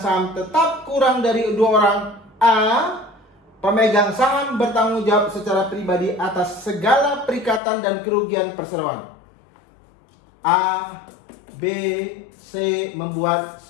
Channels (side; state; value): right; drops out; at 7.6 s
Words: tetap kurang dari 2 orang. A. Pemegang saham bertanggung jawab secara pribadi atas segala perikatan dan kerugian perseroan. A, B, C membuat